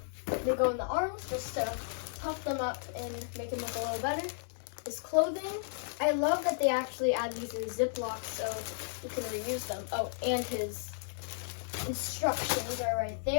they go in the arms just to puff them up and make them look a little better. His clothing, I love that they actually add these in Ziplocs so you can reuse them. Oh, and his instructions are right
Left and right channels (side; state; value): right; silent; digital silence